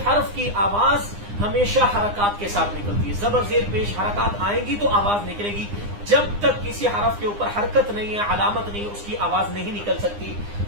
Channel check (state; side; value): late; left; 9.8 ms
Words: حرف کی آواز ہمیشہ حرکات کے ساتھ نکلتی ہے. زبر زیر پیش حرکات آئیں گی تو آواز نکلے گی. جب تک کسی حرف کے اوپر حرکت نہیں ہے, علامت نہیں ہے, اس کی آواز نہیں نکل سکتی.